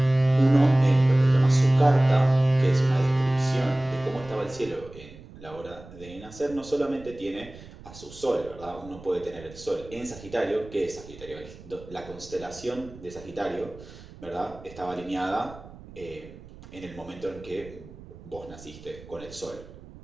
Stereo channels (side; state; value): right; noise; rumble, 18 dB below the sound